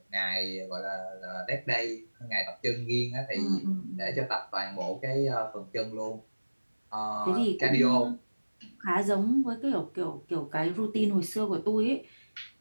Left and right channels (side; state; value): both; inverted; correlation -1.00